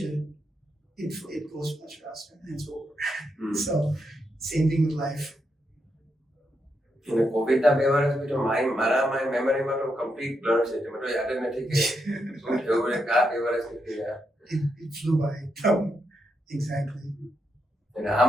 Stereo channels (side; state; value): both; normal; correlation 0.82